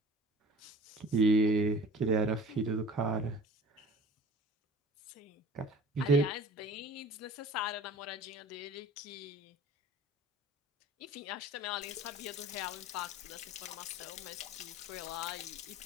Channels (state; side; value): normal; both; correlation 0.44